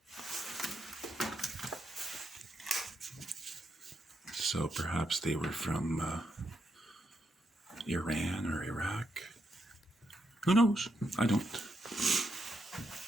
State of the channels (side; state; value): both; normal; correlation 0.81